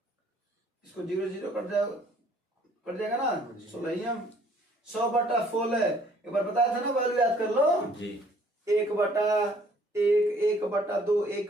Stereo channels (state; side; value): normal; both; correlation 0.60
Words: इसको 0 0 कट जाएगा ना 16 100/16 एक बार बताया था ना वैल्यू याद कर लो। जी 1/1 1/2